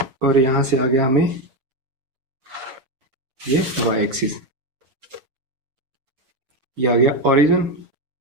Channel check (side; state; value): left; late; 7.7 ms